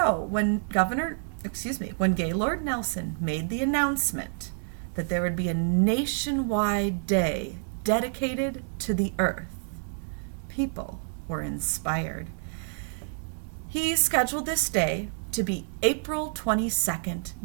when Gaylord Nelson made the announcement that there would be a nationwide day dedicated to the earth, people were inspired. He scheduled this day to be April 22nd,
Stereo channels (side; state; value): left; silent; digital silence